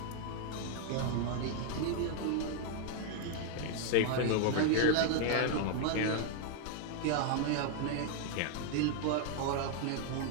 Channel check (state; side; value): different; both; correlation 0.00